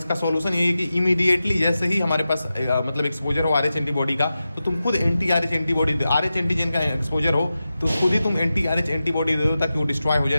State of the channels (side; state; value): both; inverted; correlation -0.92